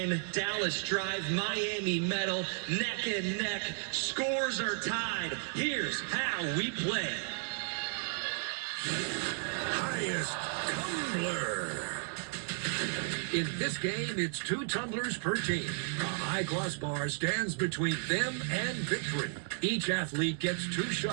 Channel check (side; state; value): left; silent; 55 dB below the other